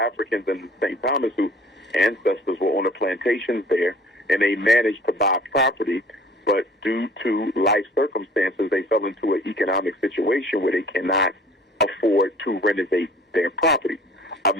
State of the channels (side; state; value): both; normal; correlation 0.51